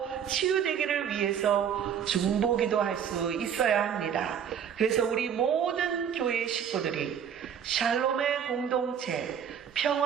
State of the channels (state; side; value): quieter; left; 8.2 dB